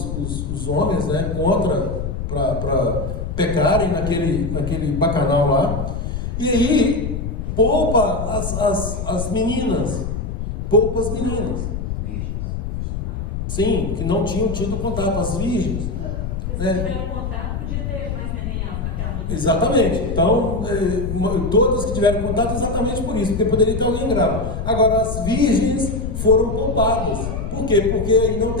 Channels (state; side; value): noise; left; rumble, 4 dB below the sound